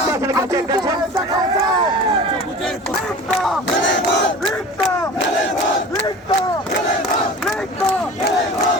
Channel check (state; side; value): normal; both; correlation 0.38